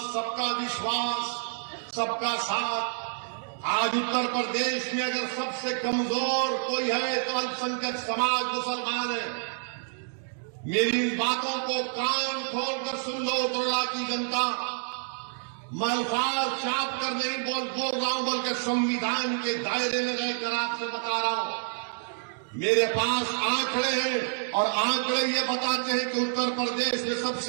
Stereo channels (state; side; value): silent; left; digital silence